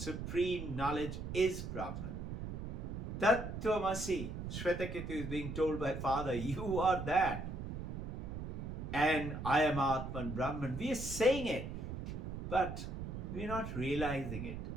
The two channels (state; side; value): noise; right; rumble, 6 dB below the sound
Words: knowledge is Brahman. Tattvamasi, Shvetaketu is being told by Father, you are that. And I am Atman Brahman. We are saying it, but we are not realizing it.